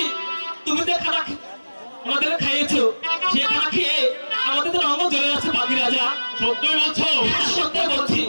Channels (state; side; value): inverted; both; correlation -1.00